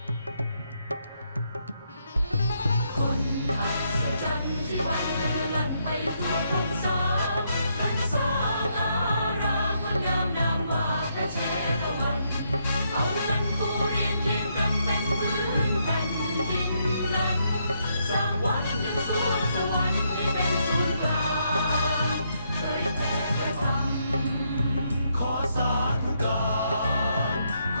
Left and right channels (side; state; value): both; inverted; correlation -0.76